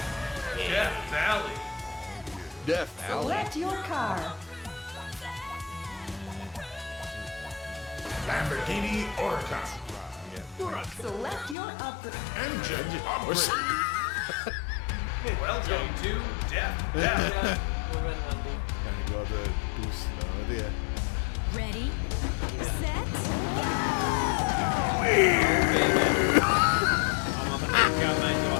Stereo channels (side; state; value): right; drops out; at 11.6 s